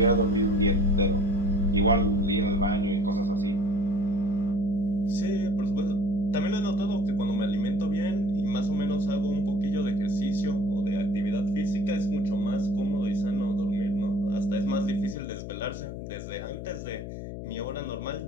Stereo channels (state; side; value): noise; left; hum, 8 dB below the sound